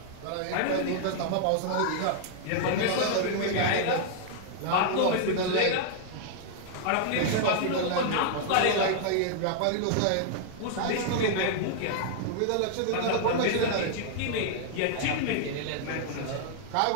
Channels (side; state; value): both; different; correlation -0.01